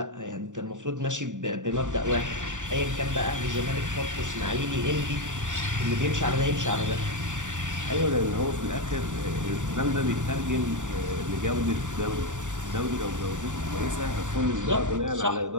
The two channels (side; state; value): left; late; 0.86 ms